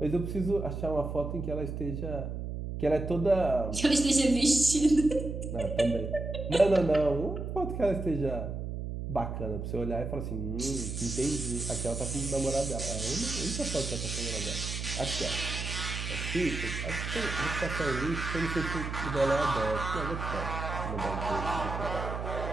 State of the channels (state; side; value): noise; right; hum, 5 dB below the sound